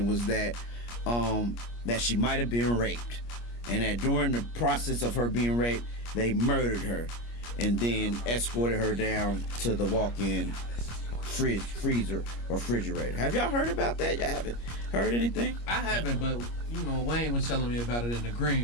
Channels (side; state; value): right; late; 25 ms